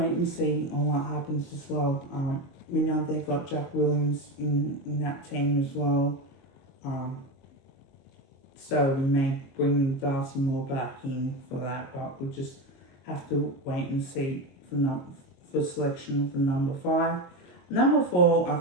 and see on what happens as well. We know they've got Jack Williams in that team as well. So we may bring Darcy Moore back in for that, but we'll just have to wait and see for selection for number 5. Number 4, I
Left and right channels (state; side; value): late; right; 22 ms